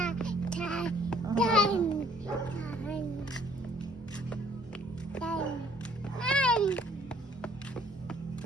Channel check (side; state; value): both; normal; correlation 0.60